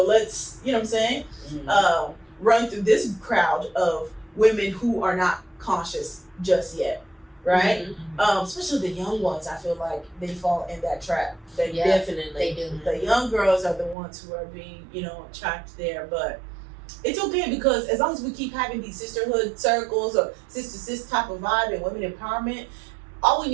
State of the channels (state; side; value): drops out; left; at 14.0 s